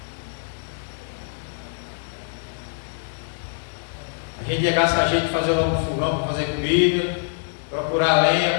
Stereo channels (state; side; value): silent; right; digital silence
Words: A gente ia gastar jeito de fazer logo um fogão para fazer comida, procurar lenha